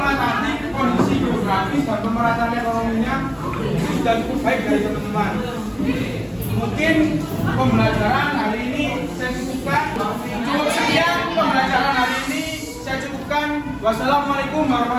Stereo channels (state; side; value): identical; both; correlation 1.00